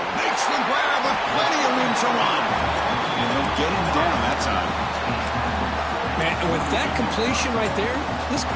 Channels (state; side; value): identical; both; correlation 1.00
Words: Makes the grab with plenty of room to run. And they'll get him down that time. Man, and with that completion right there, this